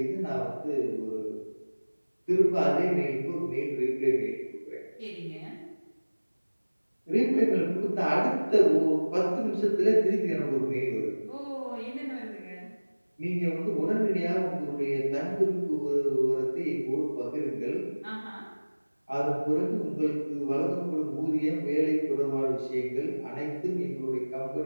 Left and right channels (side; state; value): both; inverted; correlation -1.00